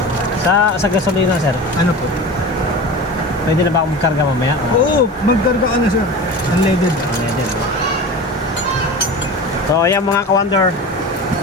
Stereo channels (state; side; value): normal; both; correlation 0.32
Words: Sa gasolina, sir. Ano po? Pwede na ba akong magkarga mamaya? Oo, magkarga ka na, sir. Unleaded. Unleaded. So, ayan mga ka-wonder.